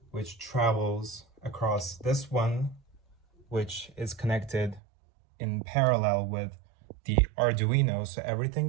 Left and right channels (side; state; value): left; drops out; at 4.8 s